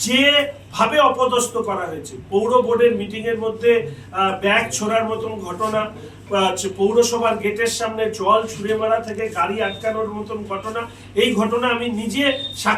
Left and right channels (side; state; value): both; identical; correlation 1.00